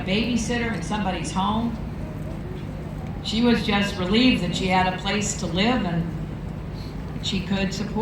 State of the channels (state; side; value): identical; both; correlation 1.00